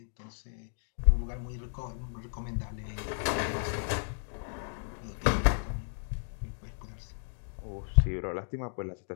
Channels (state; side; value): silent; right; digital silence